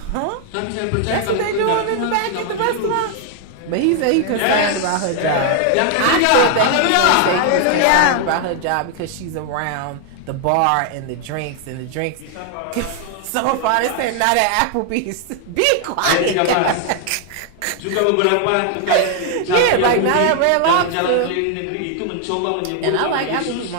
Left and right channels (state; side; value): different; both; correlation 0.00